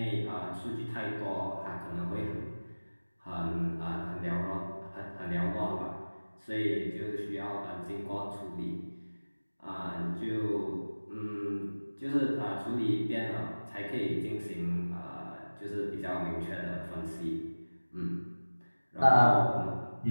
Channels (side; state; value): both; inverted; correlation -1.00